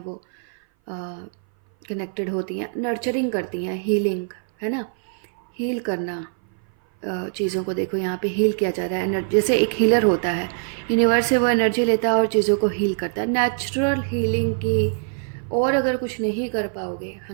वो कनेक्टेड होती हैं, नर्चरिंग करती हैं, हीलिंग, है ना, हील करना चीज़ों को। देखो यहाँ पे हील किया जा रहा है, जैसे एक हीलर होता है, यूनिवर्स से वो एनर्जी लेता है और चीज़ों को हील करता है, नेचुरल हीलिंग की। और अगर कुछ नहीं कर पाओगे,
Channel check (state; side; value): silent; left; 57 dB below the other